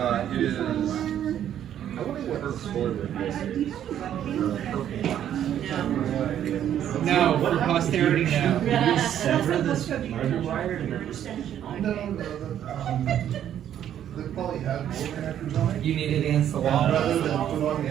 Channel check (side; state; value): left; quieter; 10.4 dB